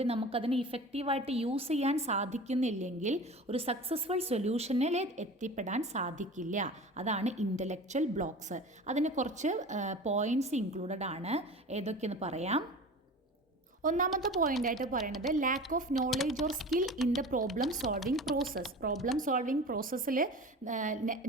നമുക്കതിനെ ഇഫക്റ്റീവായിട്ട് യൂസ് ചെയ്യാൻ സാധിക്കുന്നില്ലെങ്കിൽ ഒരു സക്സസ്ഫുൾ സൊല്യൂഷനിൽ എത്തിപ്പെടാൻ സാധിക്കില്ല. അതാണ് ഇൻ്റലക്ച്വൽ ബ്ലോക്സ്. അതിന് കുറച്ച് പോയിൻറ്റ്സ് ഇൻക്ലൂഡഡ് ആണ്. ഏതൊക്കെയെന്ന് പറയാം. ഒന്നാമത്തെ പോയിൻ്റായിട്ട് പറയുന്നത് lakh of knowledge or skill in the problem solving process. Problem solving പ്രോസസ്സിൽ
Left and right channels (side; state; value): both; normal; correlation 0.36